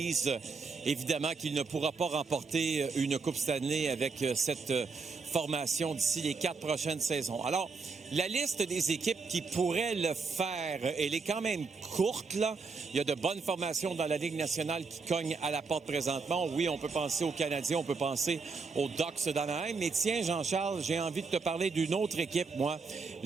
évidemment, qu'il ne pourra pas remporter une Coupe Stanley avec cette formation d'ici les 4 prochaines saisons. Alors, la liste des équipes qui pourraient le faire, elle est quand même courte, là. Il y a de bonnes formations dans la Ligue nationale qui cognent à la porte présentement. Oui, on peut penser aux Canadiens, on peut penser aux Ducks d'Anaheim. Mais tiens, Jean-Charles, j'ai envie de te parler d'une autre équipe, moi.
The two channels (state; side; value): quieter; left; 4.6 dB